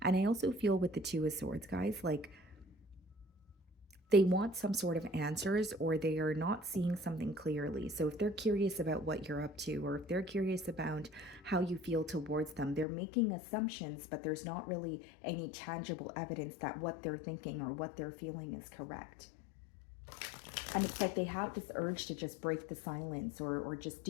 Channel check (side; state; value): right; drops out; at 12.9 s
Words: And I also feel with the Two of Swords, guys, like they want some sort of answers or they are not seeing something clearly. So if they're curious about what you're up to, or if they're curious about how you feel towards them, they're making assumptions, but there's not really any tangible evidence that what they're thinking or what they're feeling is correct. And it's like they have this urge to just break the silence or just